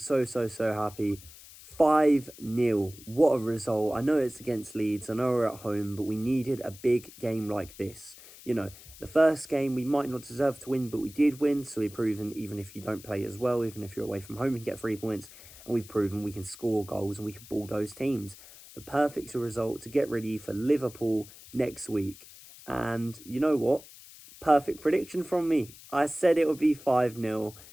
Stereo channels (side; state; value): left; noise; hiss, 19 dB below the sound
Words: happy. 5-0. What a result. I know it's against Leeds. I know we're at home, but we needed a big game like this. The first game we might not deserve to win, but we did win. So we've proven even if you don't play as well, even if you're away from home, you can get 3 points. And we've proven we can score goals and we can bulldoze teams. The perfect result to get ready for Liverpool next week. And you know what? Perfect prediction from me. I said it would be 5-0.